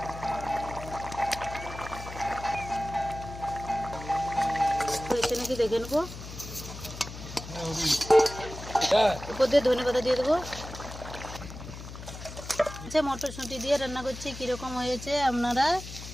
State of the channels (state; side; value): noise; left; hum, 11 dB below the sound